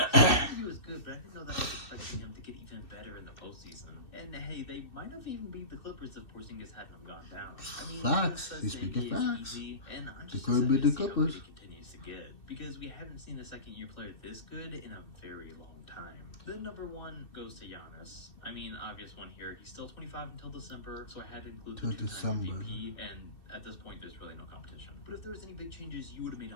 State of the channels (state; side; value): late; right; 2.6 ms